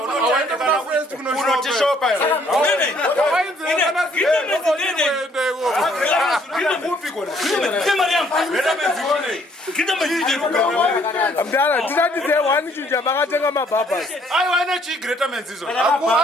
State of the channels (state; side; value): normal; both; correlation 0.64